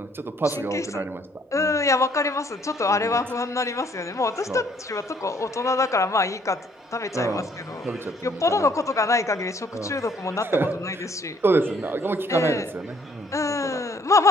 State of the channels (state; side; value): normal; both; correlation 0.63